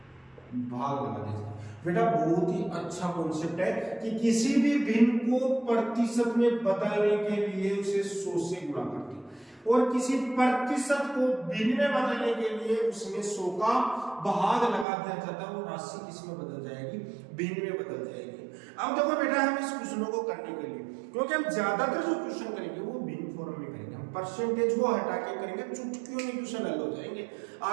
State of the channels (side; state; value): left; drops out; at 14.9 s